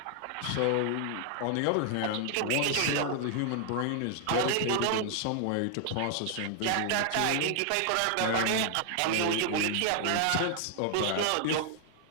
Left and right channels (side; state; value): both; different; correlation 0.00